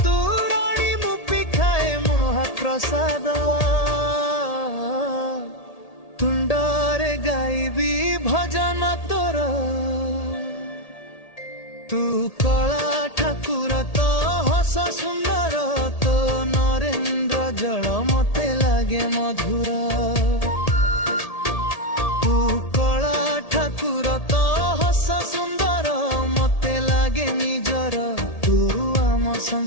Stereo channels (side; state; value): right; late; 1.8 ms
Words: मुपी खाए महाप्रसाद तुंडरे गाइबी भजन तोर तू कला ठाकुर तो हस सुंदर तो नरेंद्र जल मते लागे मधुर ठाकुर तो हस सुंदर मते लागे निजर तू आम